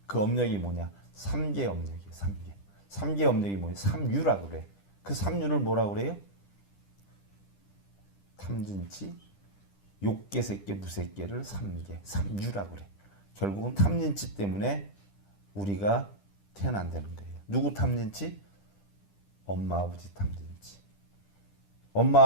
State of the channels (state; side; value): late; right; 10 ms